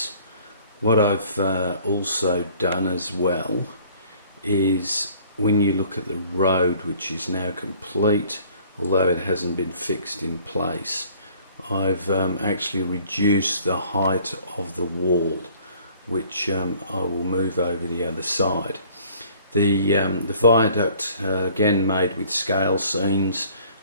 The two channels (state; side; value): inverted; both; correlation -0.55